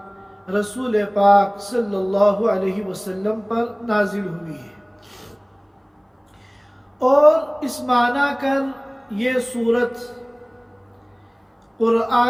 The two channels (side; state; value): both; identical; correlation 1.00